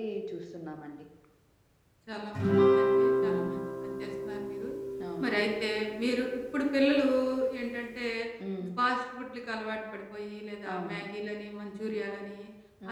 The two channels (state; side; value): identical; both; correlation 1.00